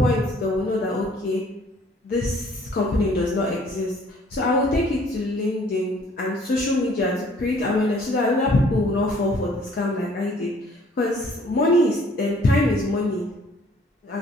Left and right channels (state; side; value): normal; both; correlation 0.58